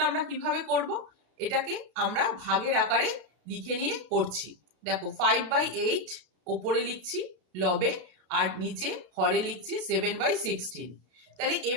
আমরা কিভাবে করব, এটাকে আমরা ভাগের আকারে লিখে নিয়ে করছি। দেখো 5/8 ওপরে লিখছি লবে, আর নিচে হরে লিখছি 7/16। তাহলে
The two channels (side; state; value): left; late; 33 ms